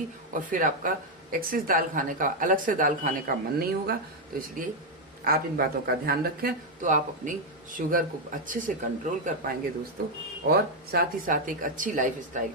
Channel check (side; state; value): both; normal; correlation 0.02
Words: और फिर आपका एक्सेस दाल खाने का, अलग से दाल खाने का मन नहीं होगा। तो इसलिए आप इन बातों का ध्यान रखें तो आप अपनी शुगर को अच्छे से कंट्रोल कर पाएंगे दोस्तों, और साथ ही साथ एक अच्छी लाइफ स्टाइल